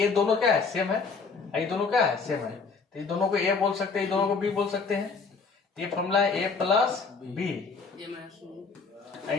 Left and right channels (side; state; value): right; quieter; 4.8 dB